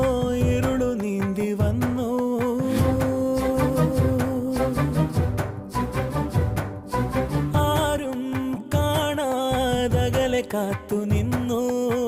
ഇരുളു നീന്തി വന്നു, ആരും കാണാതകലെ കാത്തു നിന്നു.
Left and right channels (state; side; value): identical; both; correlation 1.00